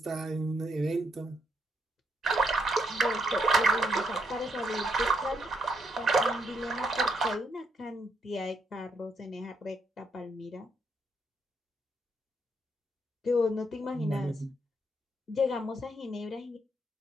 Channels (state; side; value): normal; both; correlation 0.76